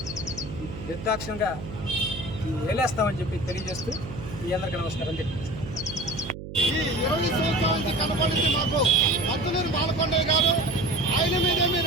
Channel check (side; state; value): right; noise; hum, 10 dB below the sound